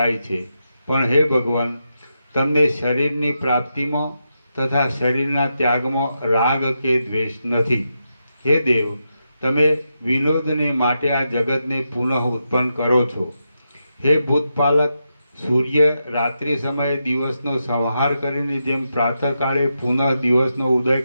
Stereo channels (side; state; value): both; inverted; correlation -0.86